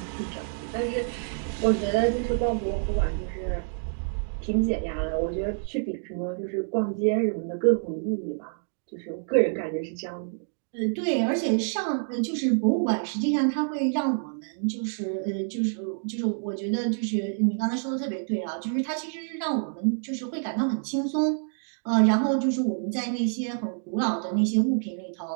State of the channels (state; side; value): silent; left; digital silence